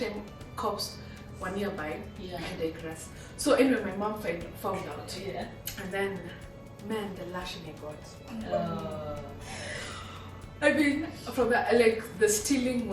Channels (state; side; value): identical; both; correlation 1.00